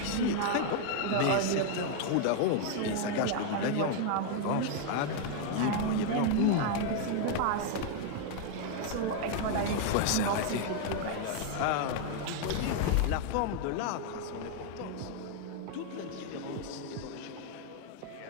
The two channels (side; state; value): both; different; correlation 0.00